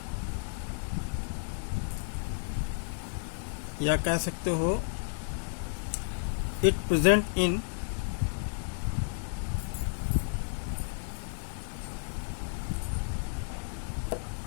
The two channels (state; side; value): silent; right; digital silence